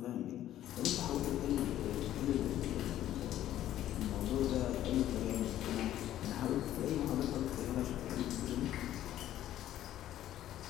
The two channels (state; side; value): quieter; right; 12.6 dB